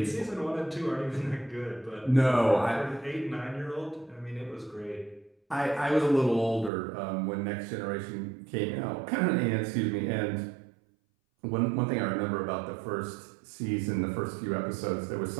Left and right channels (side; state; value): left; drops out; at 6.7 s